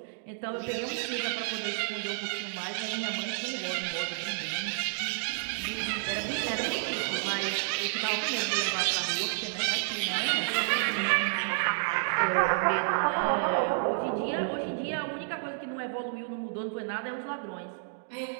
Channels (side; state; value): left; silent; digital silence